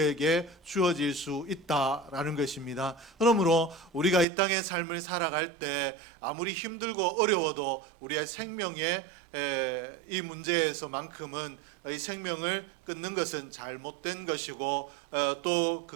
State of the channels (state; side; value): drops out; left; at 4.2 s